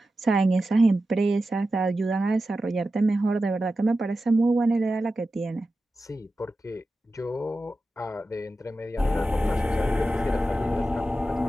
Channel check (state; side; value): normal; both; correlation 0.92